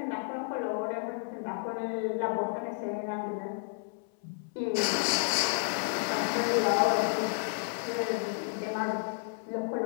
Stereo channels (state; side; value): silent; right; 57 dB below the other